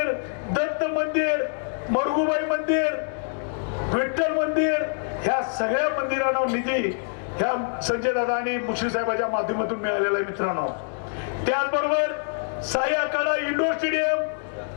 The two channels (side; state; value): right; silent; digital silence